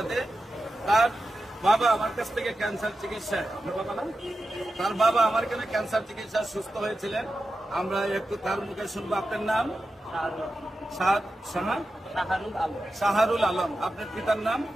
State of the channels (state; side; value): normal; both; correlation 0.91